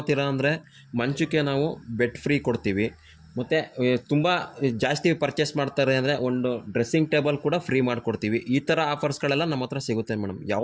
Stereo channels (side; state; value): both; identical; correlation 1.00